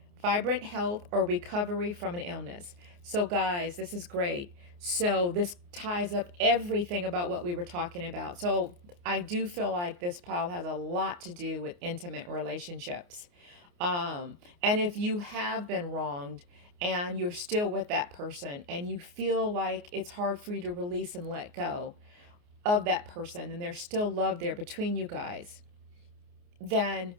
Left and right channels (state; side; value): late; left; 29 ms